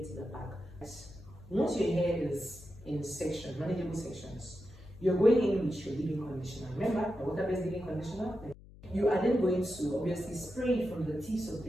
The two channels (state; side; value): noise; left; hum, 20 dB below the sound